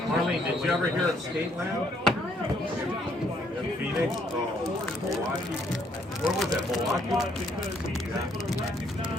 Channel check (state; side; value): normal; both; correlation 0.68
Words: Marlene, did you ever hear of Skateland? In Phoenix? Oh, Milwaukee. Where was that, Milwaukee?